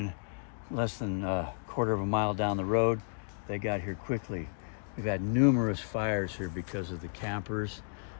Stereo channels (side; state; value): right; silent; digital silence